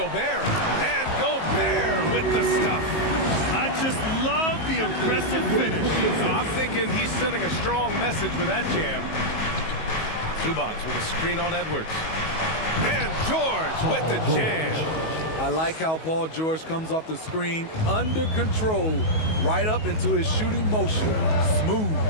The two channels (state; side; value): late; right; 19 ms